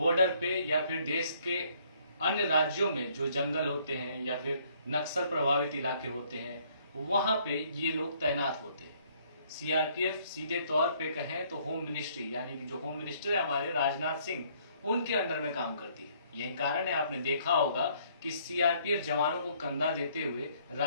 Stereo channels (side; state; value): both; inverted; correlation -0.64